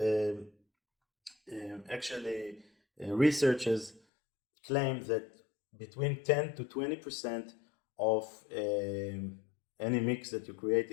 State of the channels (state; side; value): drops out; right; at 4.0 s